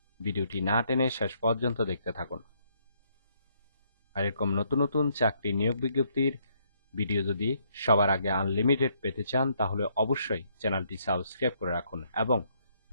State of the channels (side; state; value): both; inverted; correlation -0.71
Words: ভিডিওটি না টেনে শেষ পর্যন্ত দেখতে থাকুন। আর এরকম নতুন নতুন চাকরি নিয়োগ বিজ্ঞপ্তির ভিডিও যদি সবার আগে আনলিমিটেড পেতে চান তাহলে অবশ্যই চ্যানেলটি সাবস্ক্রাইব করে রাখুন এবং